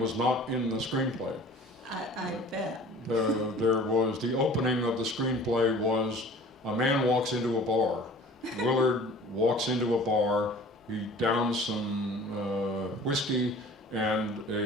was not in the screenplay. I bet. There was, the opening of the screenplay was a man walks into a bar. Willard walks into a bar, he downs some whiskey, and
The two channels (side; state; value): both; normal; correlation 0.45